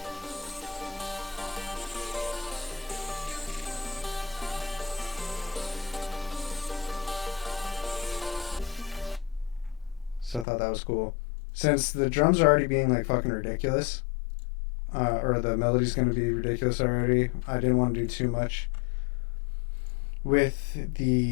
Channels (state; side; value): drops out; right; at 10.5 s